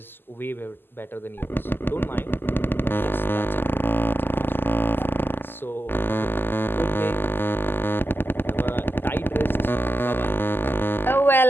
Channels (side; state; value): right; late; 0.098 ms